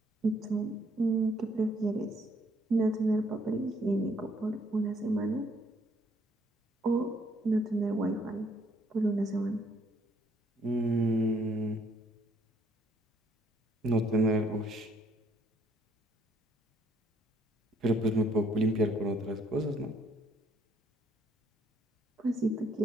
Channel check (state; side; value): normal; both; correlation 0.67